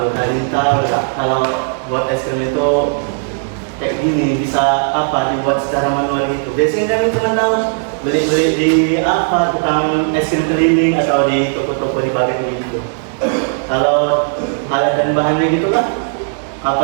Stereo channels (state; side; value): silent; left; digital silence